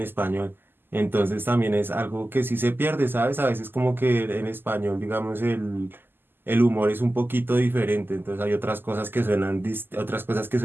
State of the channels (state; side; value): late; left; 0.097 ms